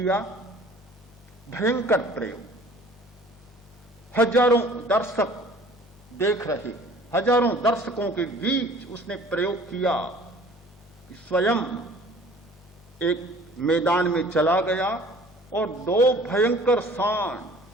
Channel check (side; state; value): both; normal; correlation 0.49